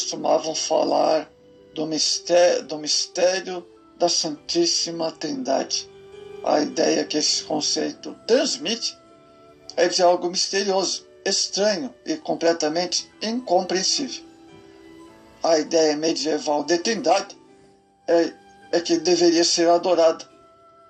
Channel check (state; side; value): identical; both; correlation 1.00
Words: falar do mistério da Santíssima Trindade. A ideia que esse conceito transmite é de algo misterioso, estranho e completamente incompreensível. A ideia medieval de Trindade é que deveria ser adorada,